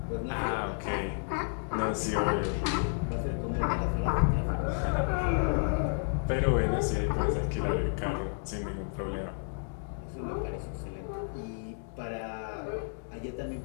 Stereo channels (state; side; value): silent; right; digital silence